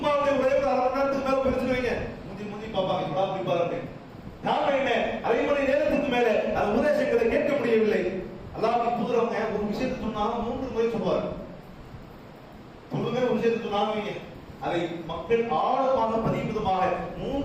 ஒரே ஒரு அரை மணி நேரத்துக்கு மேல பேசிட்டு வைங்க, முந்தி பார்ப்பாங்க, இப்படா போய் பாருங்க. நாம என்ன அரை மணி நேரத்துக்கு மேல அந்த உபதேசங்களை கேட்க முடியவில்லை. அல்லாஹ்வின் தூதரவங்க ஒரு விஷயத்தை சொன்னாலும் 3 முறை சொல்வார். சொல்லுங்க, ஒரு விஷயத்தை சொன்னாங்க, அதை மக்கள் ஆழமாக பதிவு விதமாக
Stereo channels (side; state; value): both; identical; correlation 1.00